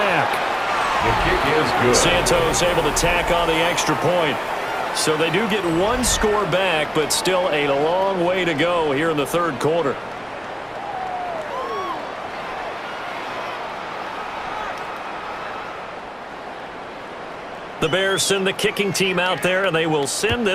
The kick is good. Santos able to tack on the extra point. So they do get 1 score back, but still a long way to go here in the 3rd quarter. The Bears send the kicking team out there, and they will send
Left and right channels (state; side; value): identical; both; correlation 1.00